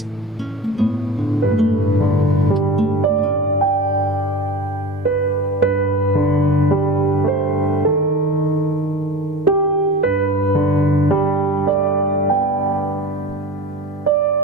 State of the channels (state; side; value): normal; both; correlation 0.33